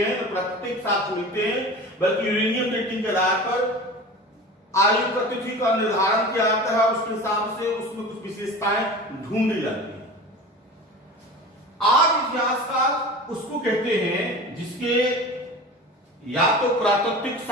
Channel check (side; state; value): both; normal; correlation 0.35